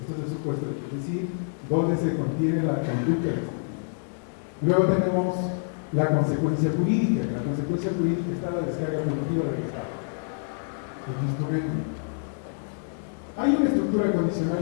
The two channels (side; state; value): right; silent; digital silence